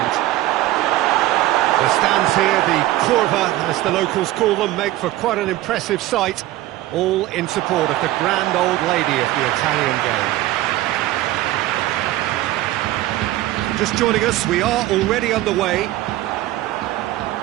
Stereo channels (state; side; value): quieter; left; 15.8 dB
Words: The stands here, the curva, as the locals call them, make for quite an impressive sight, all in support of the grand old lady of the Italian game. Just joining us, we are already underway.